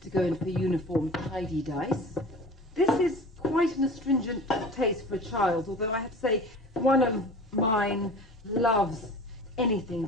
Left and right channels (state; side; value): normal; both; correlation 0.38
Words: to go in for uniform tidy dice. This is quite an astringent taste for a child, although I have to say one of mine loves anything